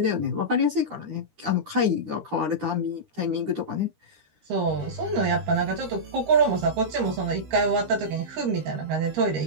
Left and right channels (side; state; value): left; late; 13 ms